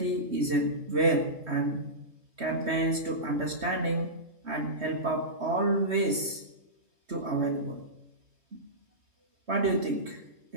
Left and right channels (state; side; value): late; left; 3.2 ms